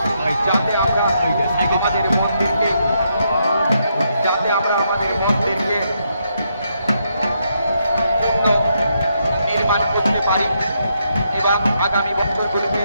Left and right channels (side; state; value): both; inverted; correlation -0.78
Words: যাতে আমরা আমাদের মন্দিরকে নির্মাণ করতে পারি। এবং আগামী বছরগুলোতে